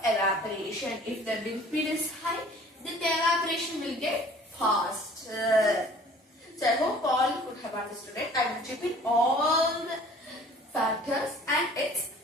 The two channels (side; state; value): both; normal; correlation 0.50